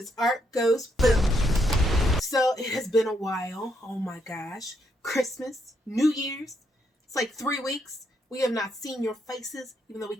Art Goes Boom. So it has been a while. Oh my gosh. Christmas, New Year's. It's like 3 weeks. We have not seen your faces. Even though we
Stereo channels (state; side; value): normal; both; correlation 0.76